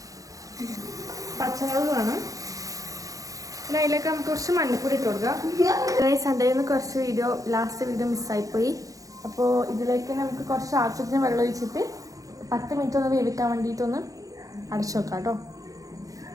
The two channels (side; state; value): left; late; 0.17 ms